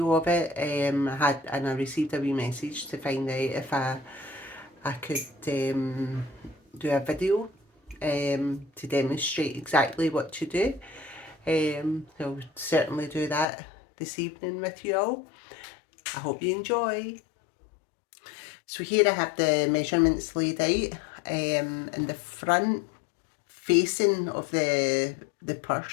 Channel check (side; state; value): right; drops out; at 13.5 s